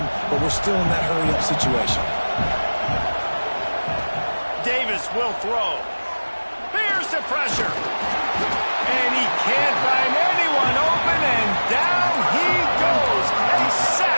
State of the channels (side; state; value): both; inverted; correlation -1.00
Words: but we're still in that hurry-up situation. Davis will throw. There's the pressure. And he can't find anyone open, and down he goes. A